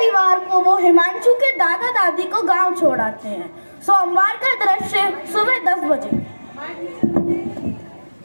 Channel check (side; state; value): both; inverted; correlation -1.00